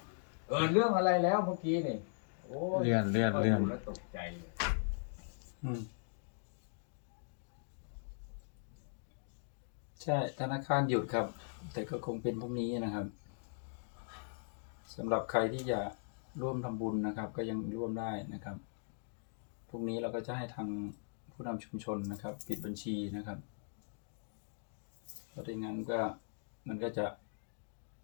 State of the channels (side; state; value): right; silent; digital silence